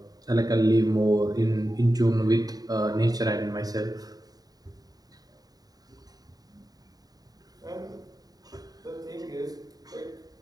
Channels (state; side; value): late; left; 0.18 ms